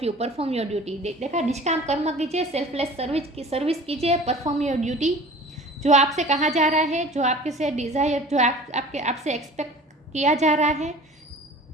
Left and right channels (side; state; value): both; normal; correlation 0.43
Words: you, perform your duty. देखा, निष्काम कर्म कीजिए, सेल्फलेस सर्विस कीजिए, परफॉर्म योर ड्यूटी। जो आपसे कहा जा रहा है, जो आपके से डिज़ायर, जो आपसे एक्सपेक्ट किया